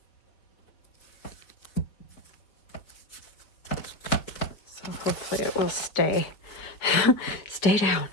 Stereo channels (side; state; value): right; late; 4.8 ms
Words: So hopefully it will stay. Stay down.